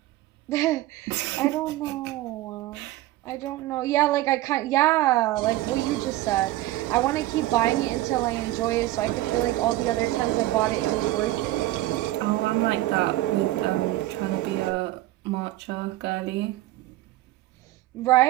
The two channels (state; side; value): quieter; left; 16.3 dB